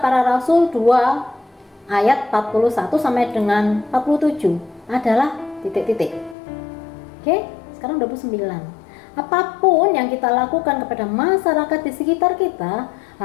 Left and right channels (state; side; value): drops out; right; at 6.4 s